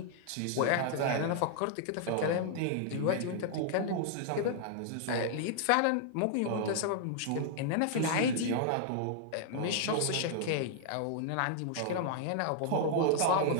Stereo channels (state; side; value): different; both; correlation -0.01